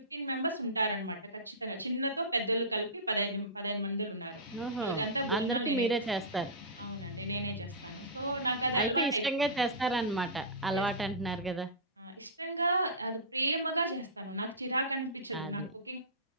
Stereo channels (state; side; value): normal; both; correlation -0.17